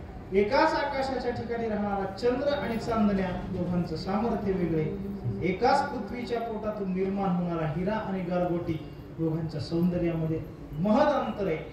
एकाच आकाशाच्या ठिकाणी राहणारा चंद्र आणि चांदण्या, दोघांचं सामर्थ्य वेगळे. एकाच पृथ्वीच्या पोटातून निर्माण होणारा हिरा आणि गारगोटी, दोघांच्या सौंदर्यामध्ये महद अंतर आहे.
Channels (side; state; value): both; identical; correlation 1.00